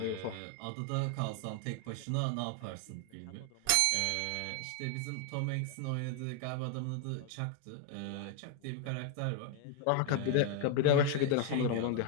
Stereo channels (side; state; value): both; different; correlation 0.00